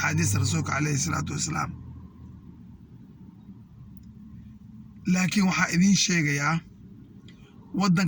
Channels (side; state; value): both; identical; correlation 1.00